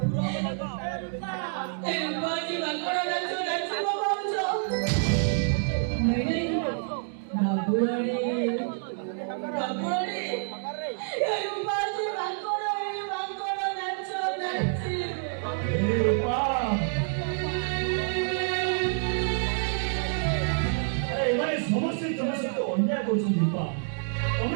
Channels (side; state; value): left; silent; digital silence